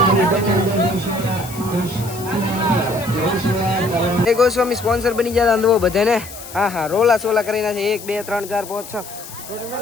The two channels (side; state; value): left; noise; hiss, 14 dB below the sound